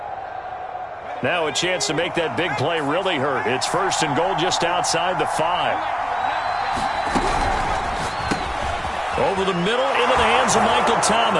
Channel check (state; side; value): identical; both; correlation 1.00